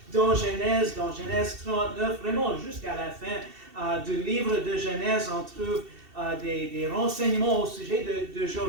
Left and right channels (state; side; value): late; left; 2.7 ms